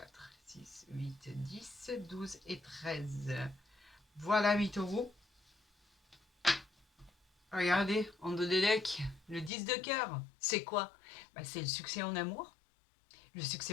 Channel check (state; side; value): drops out; right; at 9.5 s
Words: 6, 8, 10, 12 et 13. Voilà, mes taureaux. Regardez, en dos des decks, le 10 de cœur. C'est quoi? C'est le succès en amour, le